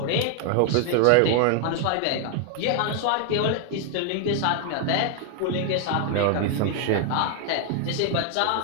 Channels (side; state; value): both; different; correlation 0.00